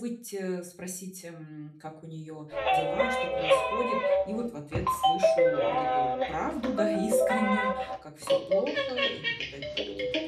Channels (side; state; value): both; identical; correlation 1.00